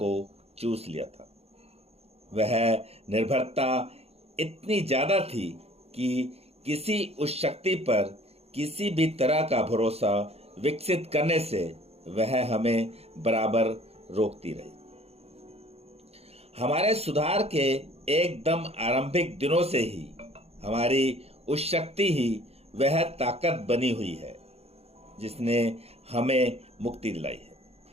चूस लिया था। वह निर्भरता इतनी ज़्यादा थी कि किसी उस शक्ति पर किसी भी तरह का भरोसा विकसित करने से वह हमें बराबर रोकती रही। हमारे सुधार के एकदम आरंभिक दिनों से ही हमारी उस शक्ति ही वह ताकत बनी हुई है जिसने हमें मुक्ति दिलाई है।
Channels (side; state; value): left; late; 0.29 ms